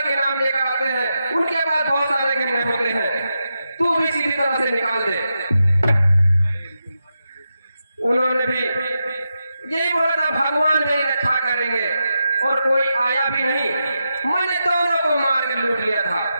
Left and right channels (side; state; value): both; inverted; correlation -0.88